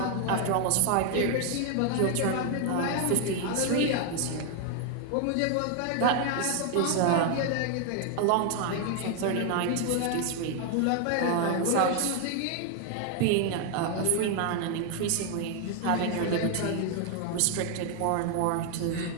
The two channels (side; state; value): both; different; correlation 0.00